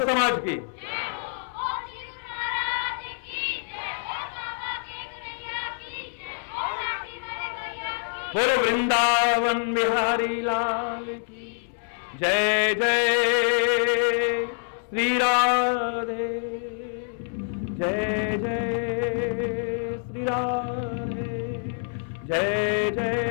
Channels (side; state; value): right; silent; 61 dB below the other